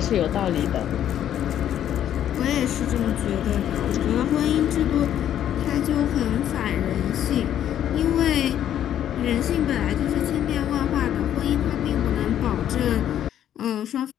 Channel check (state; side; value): quieter; right; 10.7 dB